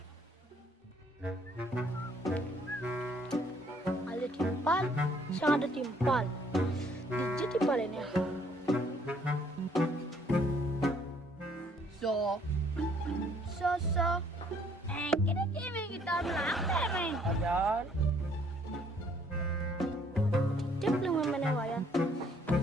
Ada timpal, sang ada timpal. Dijit timpal ini. So. Kini kita melangkah, men. Ayan. Tip lang naman na wayan.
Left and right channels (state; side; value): normal; both; correlation 0.63